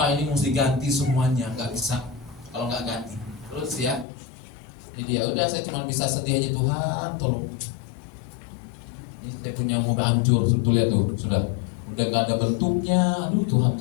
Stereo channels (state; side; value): drops out; right; at 4.0 s